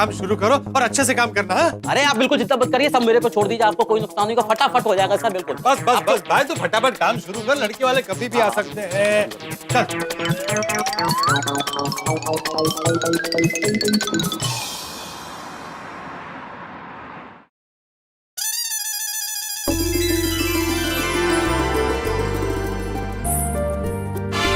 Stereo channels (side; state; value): both; identical; correlation 1.00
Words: शुरू करो और अच्छे से काम करना। हाँ? अरे आप बिल्कुल चिंता मत करिए, सब मेरे पे छोड़ दीजिए, आपको कोई नुकसान नहीं होगा, फटाफट हो जाएगा सर। बिल्कुल बस भाई, तो फटाफट काम शुरू कर, लड़के वाले कभी भी आ सकते हैं। चल।